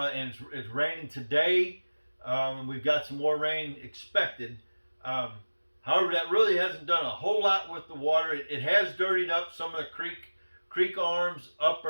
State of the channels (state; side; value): inverted; both; correlation -1.00